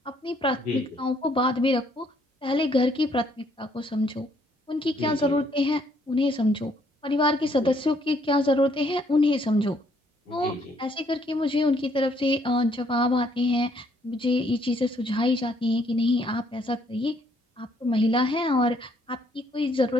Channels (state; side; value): normal; both; correlation 0.67